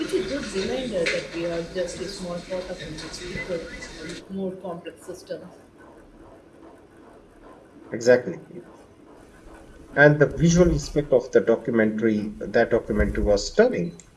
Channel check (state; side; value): identical; both; correlation 1.00